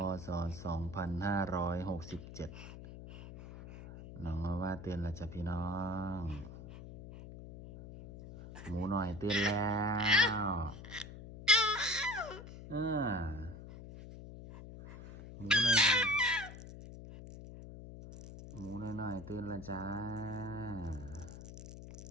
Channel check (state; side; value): noise; left; hum, 13 dB below the sound